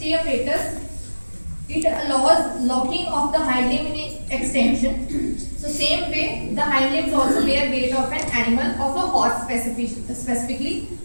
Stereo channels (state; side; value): inverted; both; correlation -1.00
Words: apparatus, it allows locking of the hind limb in extension. So same way, the hind limbs also bear weight of an animal, of a horse specifically.